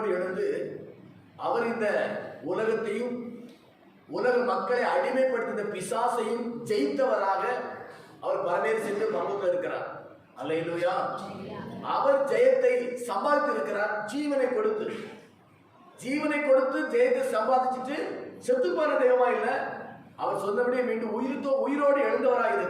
எழுந்து அவர் இந்த உலகத்தையும் உலக மக்களை அடிமைப்படுத்தின பிசாசையும் ஜெயித்தவராக அவர் பரமேறி சென்று பரலோகத்தில் இருக்கிறார். அல்லேலூயா. அவர் ஜெயத்தை சம்பாதித்து இருக்கிறார். ஜீவனை கொடுத்து ஜெயத்தை சம்பாதிச்சுட்டு செத்து போற தெய்வமா இல்ல, அவர் சொன்னபடியே மீண்டும் உயிரோடு எழுந்தவராக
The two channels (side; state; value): both; identical; correlation 1.00